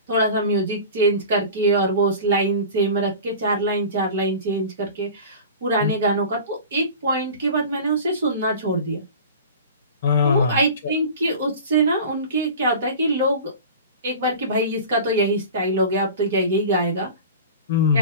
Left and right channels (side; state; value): both; inverted; correlation -0.37